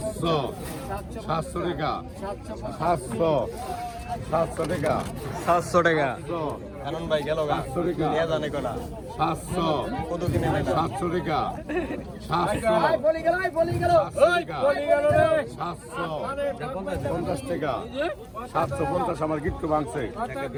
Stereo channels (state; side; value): identical; both; correlation 1.00